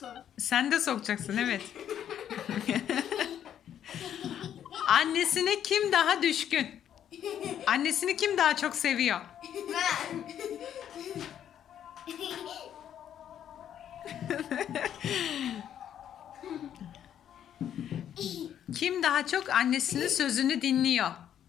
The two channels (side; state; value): right; quieter; 9.9 dB